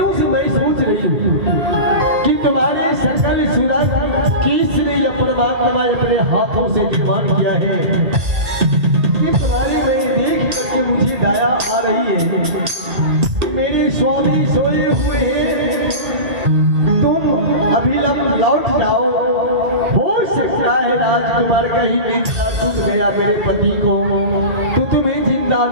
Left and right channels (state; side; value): late; left; 2.6 ms